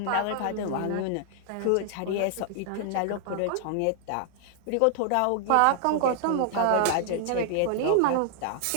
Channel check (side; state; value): both; different; correlation 0.00